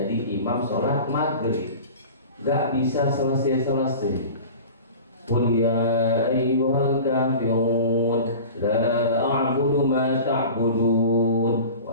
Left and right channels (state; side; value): inverted; both; correlation -0.37